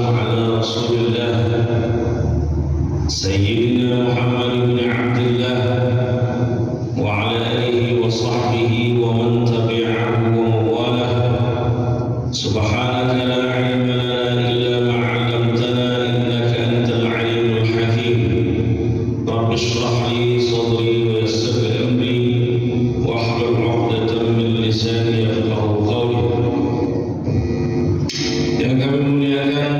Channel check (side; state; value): both; identical; correlation 1.00